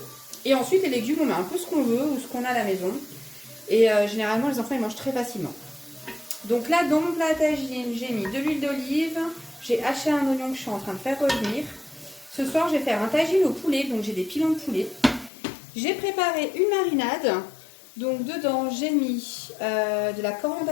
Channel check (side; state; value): right; drops out; at 15.3 s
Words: Et ensuite les légumes, on met un peu ce qu'on veut ou ce qu'on a à la maison. Et généralement les enfants ils mangent très facilement. Donc là, dans mon plat à tagine, j'ai mis de l'huile d'olive, j'ai haché un oignon que je suis en train de faire revenir. Ce soir, je vais faire un tagine au poulet, donc j'ai des pilons de poulet. J'ai préparé une marinade. Donc dedans, j'ai mis de la coriandre